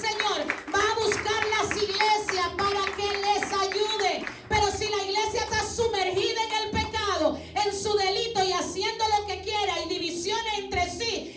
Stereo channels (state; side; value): identical; both; correlation 1.00